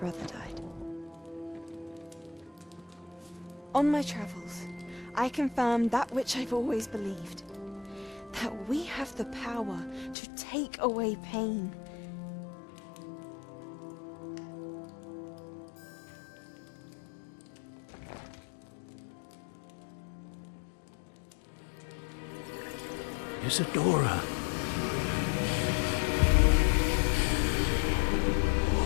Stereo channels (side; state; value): right; drops out; at 10.2 s